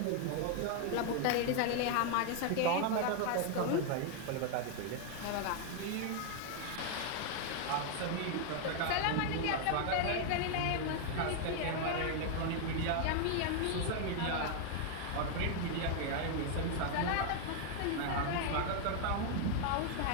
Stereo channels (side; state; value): both; different; correlation 0.00